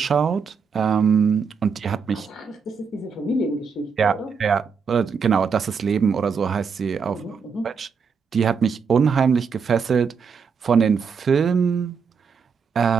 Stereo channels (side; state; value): left; quieter; 5.8 dB